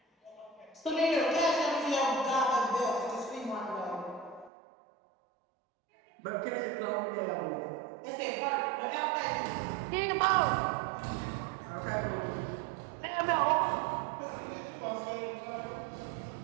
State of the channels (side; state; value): left; drops out; at 4.5 s